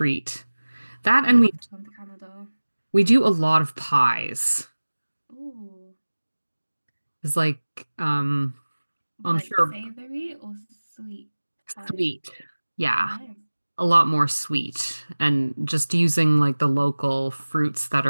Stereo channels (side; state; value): both; inverted; correlation -1.00